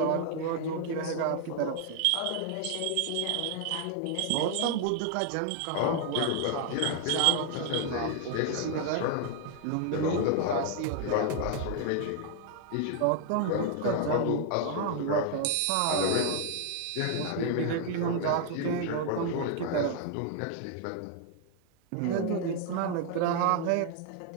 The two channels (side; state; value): both; different; correlation 0.00